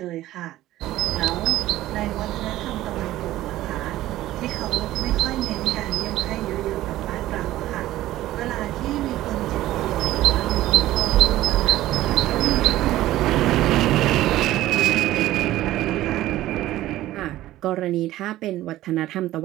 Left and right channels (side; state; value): left; quieter; 15.1 dB